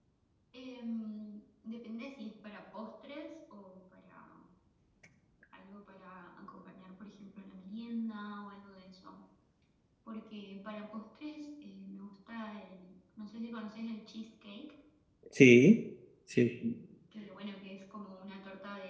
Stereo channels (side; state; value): both; identical; correlation 1.00